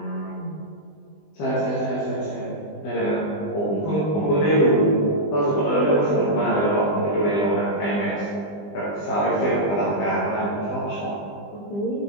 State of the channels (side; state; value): right; late; 20 ms